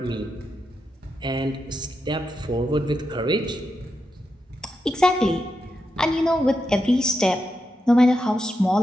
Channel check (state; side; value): normal; both; correlation 0.86